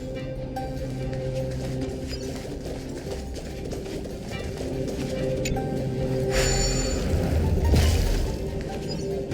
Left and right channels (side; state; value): both; identical; correlation 1.00